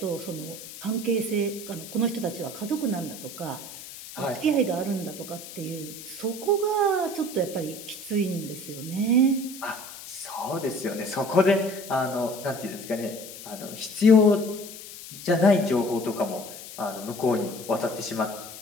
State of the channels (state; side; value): noise; left; hiss, 13 dB below the sound